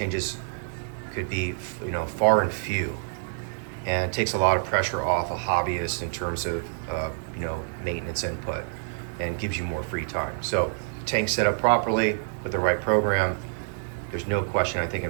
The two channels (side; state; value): left; silent; digital silence